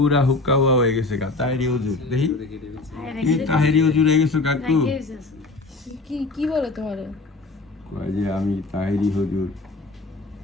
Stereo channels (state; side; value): quieter; right; 3.3 dB